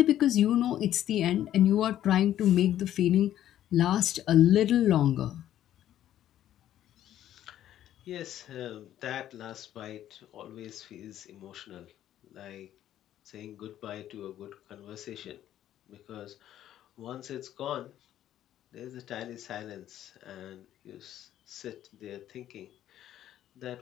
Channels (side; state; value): right; quieter; 11.9 dB